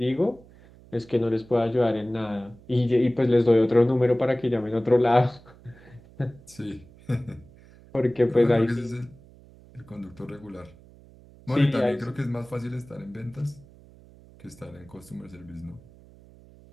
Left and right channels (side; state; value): right; noise; hum, 24 dB below the sound